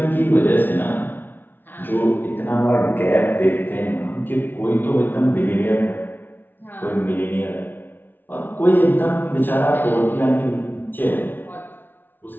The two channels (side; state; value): right; late; 0.094 ms